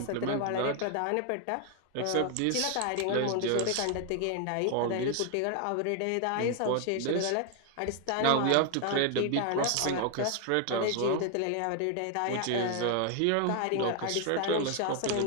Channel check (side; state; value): both; different; correlation 0.00